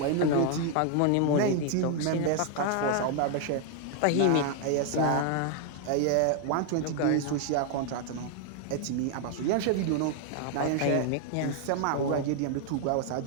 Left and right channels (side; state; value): both; different; correlation 0.00